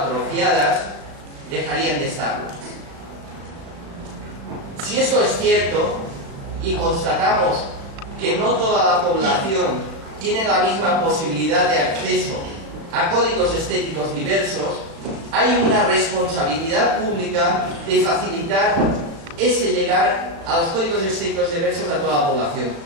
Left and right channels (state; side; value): late; left; 36 ms